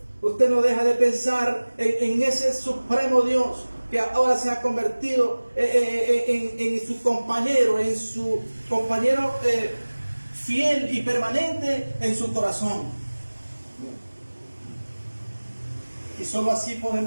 usted no deja de pensar en ese supremo Dios que ahora se ha convertido en su compañero, fiel y permanente en su corazón. Y solo así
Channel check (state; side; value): inverted; both; correlation -1.00